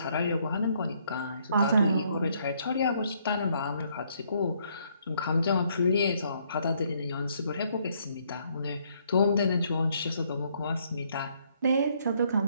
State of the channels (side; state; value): both; inverted; correlation -0.69